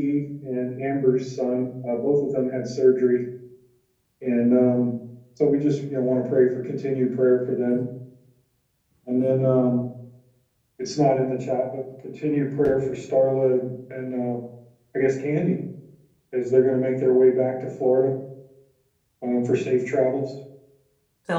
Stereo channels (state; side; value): identical; both; correlation 1.00